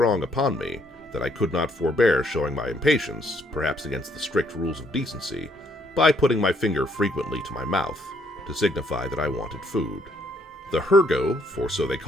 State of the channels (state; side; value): normal; both; correlation 0.70